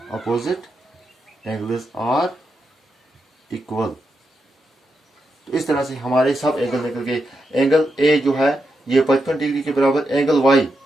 opposite angles are equal. तो इस तरह से हमारे सब एंगल निकल गए। एंगल ए जो है ये 55 डिग्री के बराबर, एंगल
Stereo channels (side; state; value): both; normal; correlation 0.85